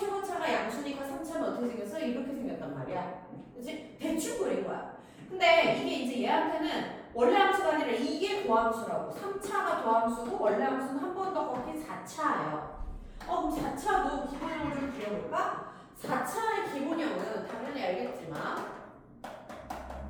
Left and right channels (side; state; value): both; identical; correlation 1.00